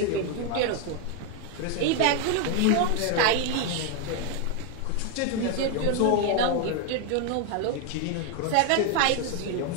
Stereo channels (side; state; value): both; different; correlation 0.01